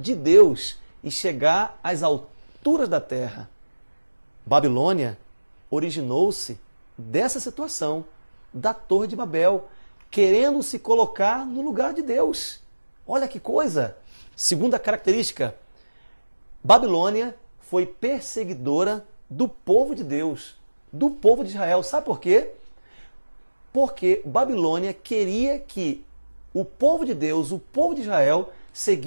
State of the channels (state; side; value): inverted; both; correlation -1.00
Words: Deus e chegar às alturas da terra. Babilônia originou-se dessa situação, da Torre de Babel, querendo se colocar no lugar de Deus. Olha que coisa! Segunda característica, Babilônia foi perseguidora do povo de Deus, do povo de Israel. Sabe por quê? Porque Babilônia queria que o povo de Deus, o povo de Israel,